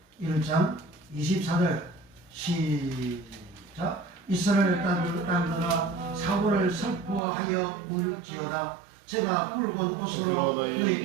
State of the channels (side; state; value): left; drops out; at 7.2 s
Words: 1장 24절 시작 이스라엘 땅들아 사울을 슬퍼하여 울지어다 제가 붉은 옷으로